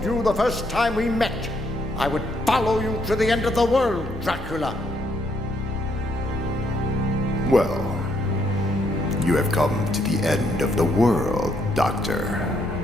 you the first time we met, I would follow you to the end of the world, Dracula. Well, you have come to the end of the world, Doctor.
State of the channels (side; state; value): both; normal; correlation 0.73